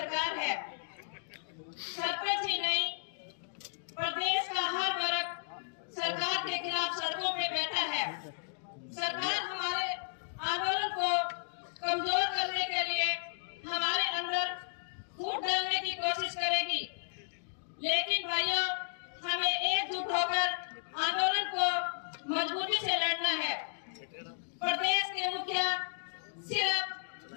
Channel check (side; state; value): right; silent; digital silence